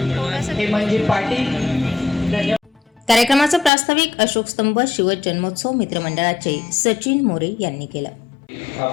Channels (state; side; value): drops out; right; at 3.7 s